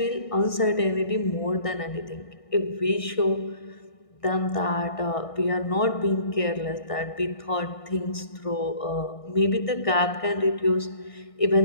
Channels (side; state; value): right; late; 1.6 ms